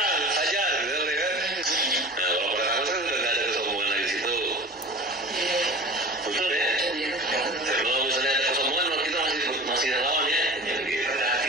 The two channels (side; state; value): both; normal; correlation 0.38